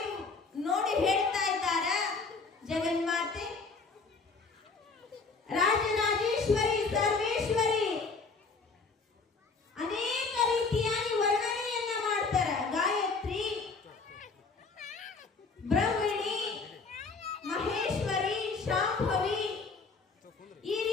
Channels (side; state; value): right; quieter; 4.3 dB